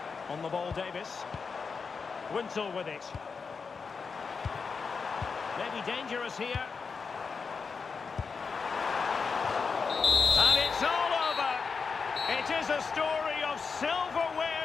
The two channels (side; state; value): right; quieter; 5.2 dB